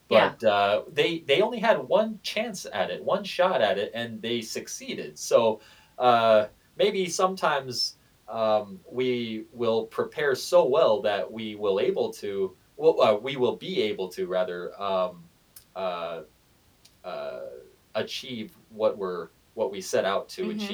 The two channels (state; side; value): identical; both; correlation 1.00